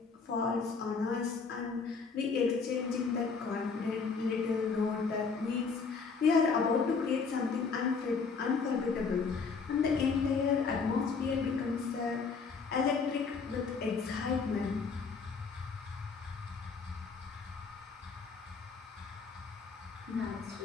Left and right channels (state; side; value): quieter; right; 5.0 dB